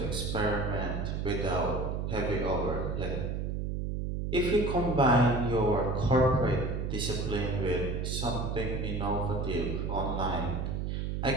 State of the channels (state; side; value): noise; right; hum, 2 dB below the sound